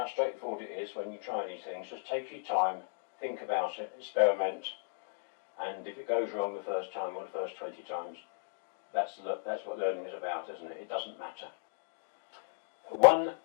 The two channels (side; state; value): right; silent; digital silence